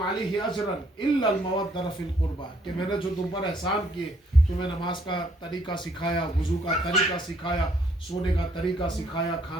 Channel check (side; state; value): both; normal; correlation 0.67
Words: عَلَيْهِ أَجْرًا إِلَّا الْمَوَدَّةَ فِي الْقُرْبَى، کہ میں نے جو تم پر احسان کیے، تمہیں نماز کا طریقہ سکھایا، وضو کا طریقہ سکھایا، سونے کا طریقہ سکھایا،